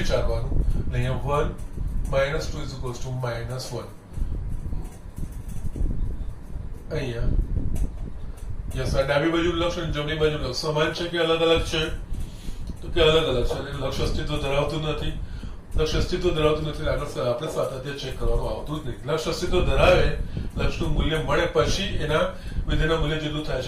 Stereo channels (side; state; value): both; identical; correlation 1.00